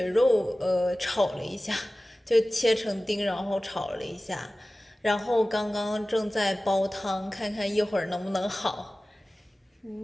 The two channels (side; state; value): both; normal; correlation 0.97